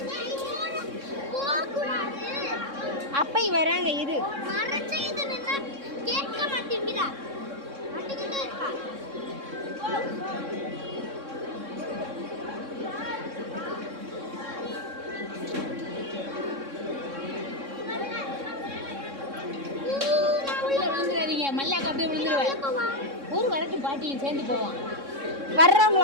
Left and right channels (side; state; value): left; late; 3.6 ms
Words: அப்பை வராங்க இரு. மல்லாக்க அப்படியே விழுந்துருவேன். ஒரு வரட்டும் பாட்டியும் சேர்ந்து போவான்.